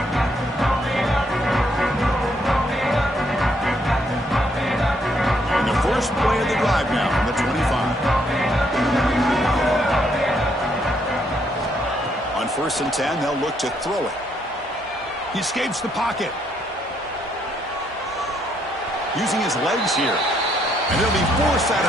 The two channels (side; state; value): both; normal; correlation 0.72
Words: And the first play of the drive now from the 25. On 1st and 10, they'll look to throw it. He escapes the pocket. Using his legs here. And he'll be forced out